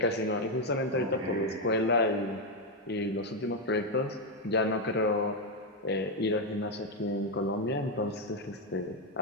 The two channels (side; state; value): both; normal; correlation 0.04